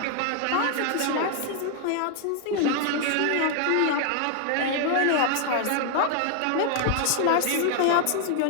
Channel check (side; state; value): both; different; correlation 0.00